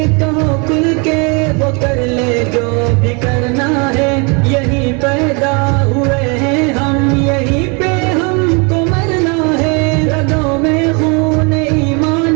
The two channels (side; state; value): left; quieter; 32.5 dB